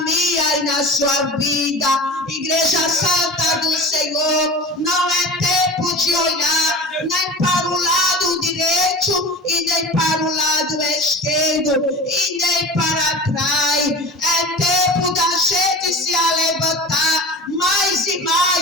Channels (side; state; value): both; normal; correlation 0.33